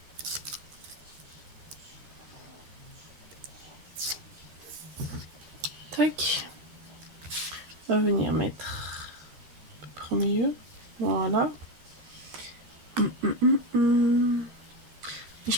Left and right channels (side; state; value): left; late; 13 ms